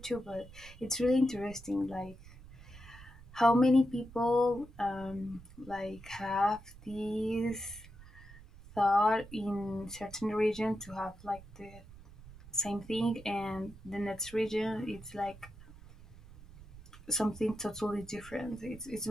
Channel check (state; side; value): noise; right; rumble, 19 dB below the sound